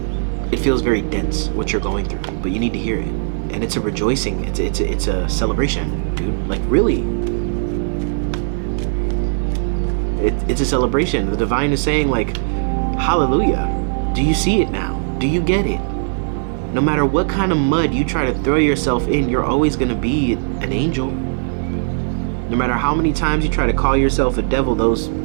it feels very dense what you're going through, but you need to hear it. And it's a rejoicing, it's a celebration, dude. Like, really, it's a celebration. The divine is saying, like, hallelujah. Do you see it now? Do you get it? No matter what kind of mud you try to throw yourself in, you're always going to be an angel. No matter how many times you try to call yourself a devil,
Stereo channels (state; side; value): silent; left; 67 dB below the other